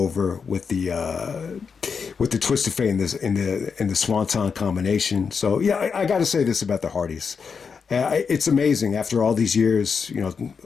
with the Twist of Fate in the Swanton combination. So yeah, I got to say this about the Hardys. It's amazing after all these years,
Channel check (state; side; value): quieter; right; 5.8 dB